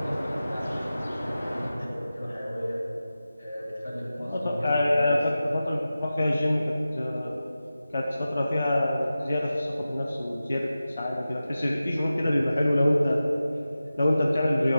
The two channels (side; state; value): both; inverted; correlation -0.94